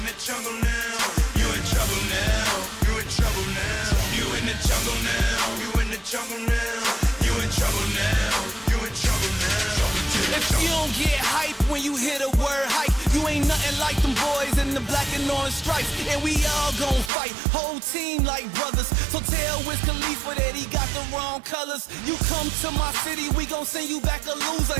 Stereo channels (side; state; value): left; drops out; at 17.1 s